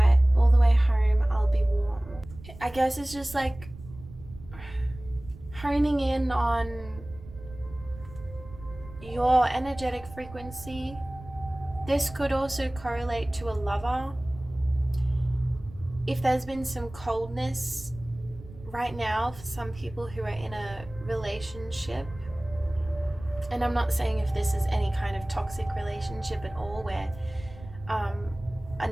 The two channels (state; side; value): noise; right; rumble, 17 dB below the sound